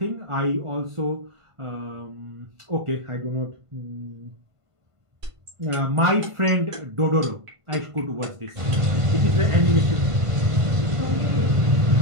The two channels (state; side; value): late; left; 1.5 ms